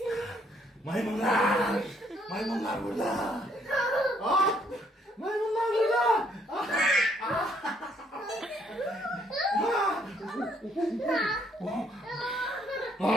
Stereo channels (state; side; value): normal; both; correlation 0.68